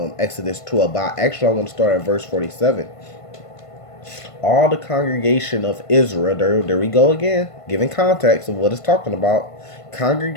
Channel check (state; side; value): late; right; 1.5 ms